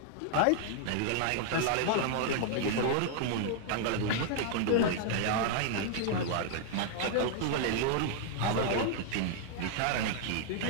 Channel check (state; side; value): different; both; correlation -0.01